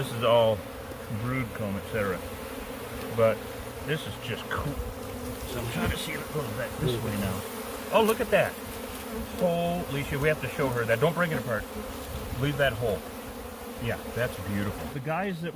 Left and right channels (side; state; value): both; identical; correlation 1.00